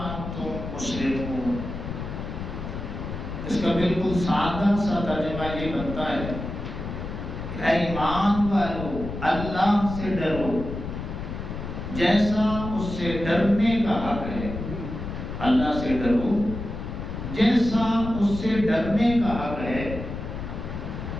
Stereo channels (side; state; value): left; noise; rumble, 7 dB below the sound